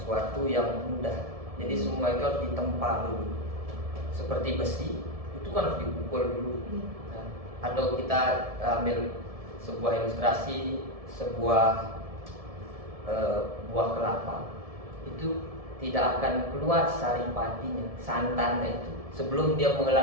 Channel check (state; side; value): late; left; 1.7 ms